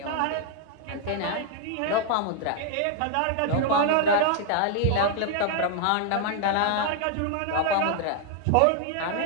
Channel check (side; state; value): both; different; correlation 0.00